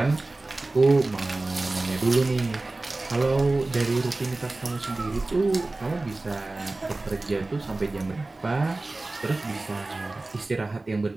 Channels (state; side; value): quieter; left; 3.1 dB